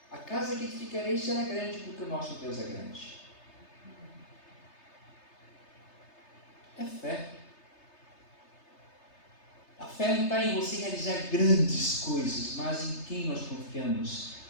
A casa que edificarei será grande, porque o nosso Deus é grande. É fé. A fé não está em você realizar grandes coisas, mas em quem nós confiamos,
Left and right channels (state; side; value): late; right; 3.3 ms